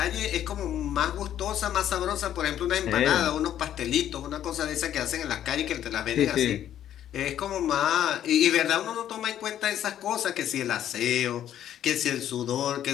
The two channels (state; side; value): quieter; right; 11.0 dB